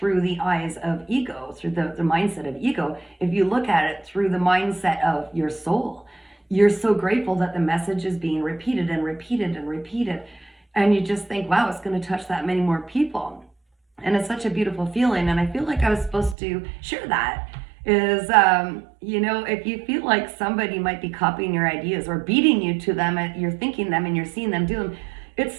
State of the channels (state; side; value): drops out; left; at 16.4 s